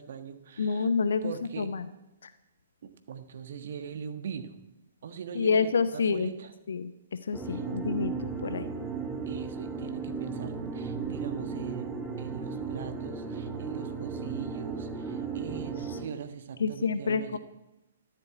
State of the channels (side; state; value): both; inverted; correlation -0.52